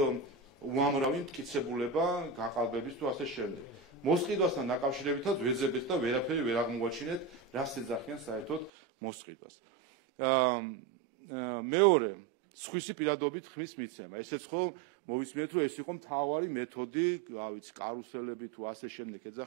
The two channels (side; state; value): left; drops out; at 8.7 s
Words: უამრავი მტკიცებულება გაყალბების თუ ასე შემდეგ. მოსყიდვასთან დაკავშირებითაც ვეძებეთ და ვერაფერი ვერ აღმოაჩინეთ, რას ეძახიან საერთოდ მოსყიდვას. მეორე, სხვისი პირადობით ხმის მიცემა. ესეც ხო მოვისმენთ, რომ ეს იყო მთავარი მეთოდი, რა ვიცი, კარუსელები თუ ასე შემდეგ